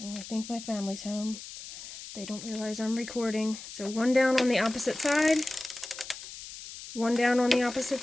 Oh, I think my family's home. They don't realize I'm recording. So 1 down on the opposite side. 1 down on the opposite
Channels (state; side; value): noise; left; hiss, 13 dB below the sound